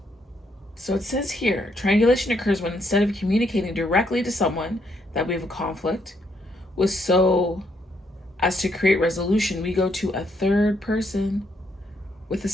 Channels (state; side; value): normal; both; correlation 0.74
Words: So it says here, triangulation occurs when instead of communicating directly to someone that we have a conflict with so as to create resolution, we go to a third person with a